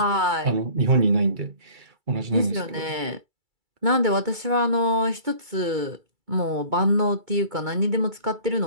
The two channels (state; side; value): late; left; 2.3 ms